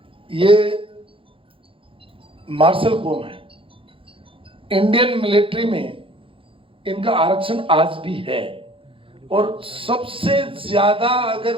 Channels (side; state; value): left; late; 0.26 ms